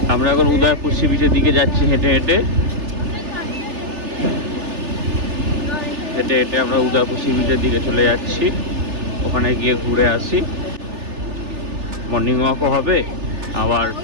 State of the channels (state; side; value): late; left; 3.3 ms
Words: আমরা এখন উদয়পুর সি বিচের দিকে যাচ্ছি হেঁটে হেঁটে। হেঁটে হেঁটে আমরা উদয়পুর সি বিচের দিকে চলে যাচ্ছি। ওখানে গিয়ে ঘুরে আসি। মর্নিং ওয়াকও হবে, আবার